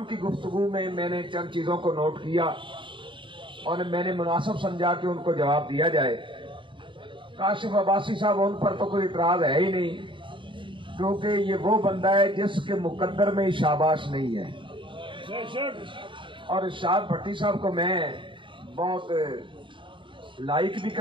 کی گفتگو میں نے چند چیزوں کو نوٹ کیا اور میں نے مناسب سمجھا کہ ان کو جواب دیا جائے۔ کاشف عباسی صاحب، ان پر تو کوئی اعتراض ہے ہی نہیں، کیونکہ یہ وہ بندہ ہے جس کے مقدر میں شاباش نہیں ہے۔ اور ارشاد بھٹی صاحب کو میں بہت لائک بھی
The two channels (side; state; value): left; late; 0.24 ms